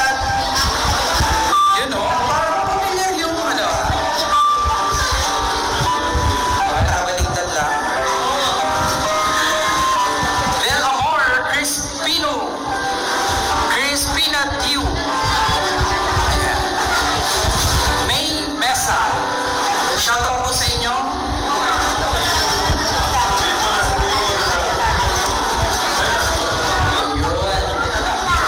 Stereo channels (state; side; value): identical; both; correlation 1.00